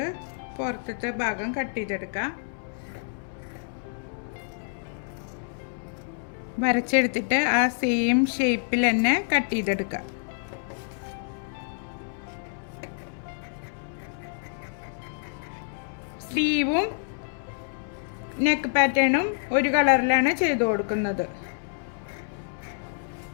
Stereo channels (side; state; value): right; silent; 60 dB below the other